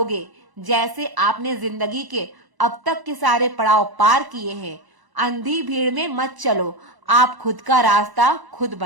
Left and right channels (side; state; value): left; late; 1.0 ms